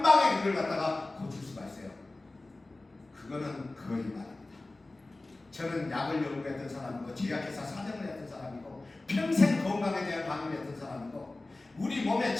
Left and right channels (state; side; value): quieter; right; 3.0 dB